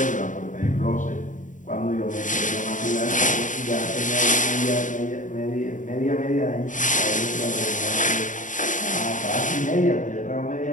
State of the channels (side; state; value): right; late; 0.37 ms